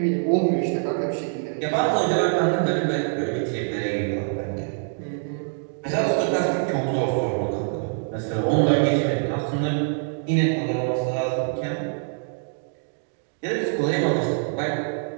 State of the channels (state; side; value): silent; left; digital silence